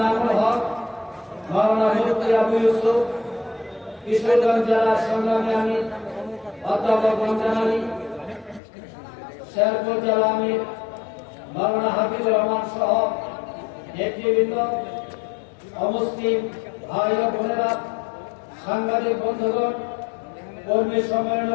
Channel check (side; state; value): right; drops out; at 8.6 s